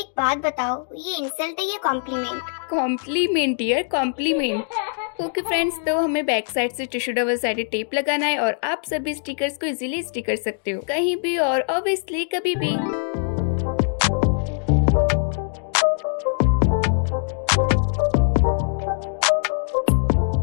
बात बताओ, ये इंसल्ट है या compliment? Compliment dear, compliment. Okay friends, तो हमें बैक साइड से टिश्यू डबल साइडेड टेप लगाना है और आप सभी स्टिकर्स को इजीली स्टिक कर सकते हो कहीं भी और ऑब्वियसली कभी भी।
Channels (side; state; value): right; silent; digital silence